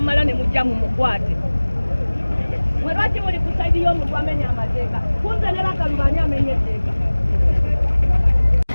ne mujja mu mukwate. Mwe lwaki muli ku saidi y'omuntu amenya amateeka? Kunze ne Bakaluba ani amenya etteeka?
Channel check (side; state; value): both; inverted; correlation -1.00